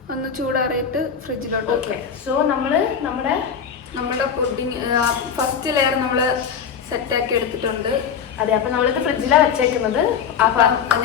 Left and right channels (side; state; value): right; quieter; 7.1 dB